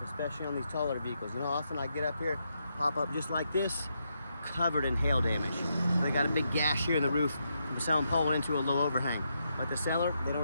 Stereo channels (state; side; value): inverted; both; correlation -0.81